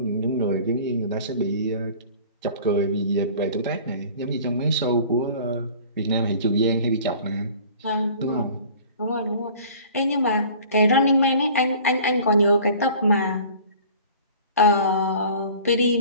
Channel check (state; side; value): inverted; both; correlation -0.46